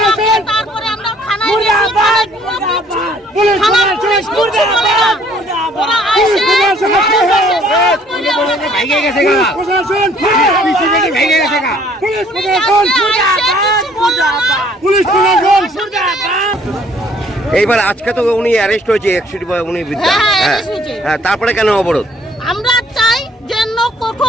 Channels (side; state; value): both; normal; correlation 0.60